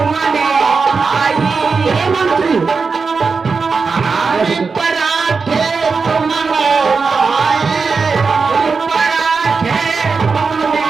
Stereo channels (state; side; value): quieter; left; 4.8 dB